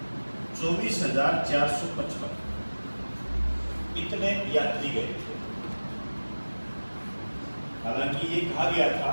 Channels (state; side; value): inverted; both; correlation -1.00